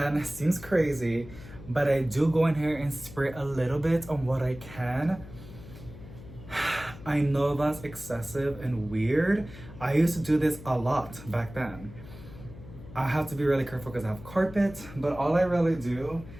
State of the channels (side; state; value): left; noise; hum, 16 dB below the sound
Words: it seems crazy, but I do go in here and spray a little bit on what I can. I know that's excessive and weird. I used to do this a lot back then. I have to be really careful because I have carpet, but all I really do